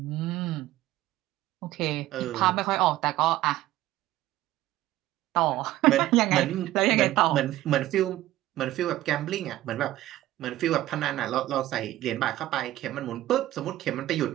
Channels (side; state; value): left; quieter; 15.3 dB